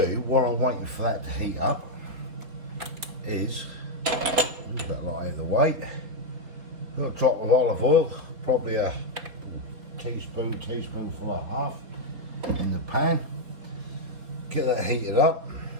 do while I'm waiting for that to heat up is, move that lot out of the way, a little drop of olive oil, probably a teaspoonful and a half in the pan. Get that heated up.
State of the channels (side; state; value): left; late; 4.2 ms